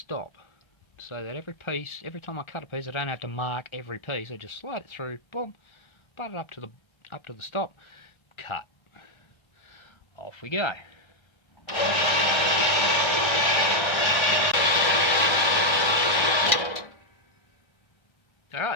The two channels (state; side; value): late; right; 1.3 ms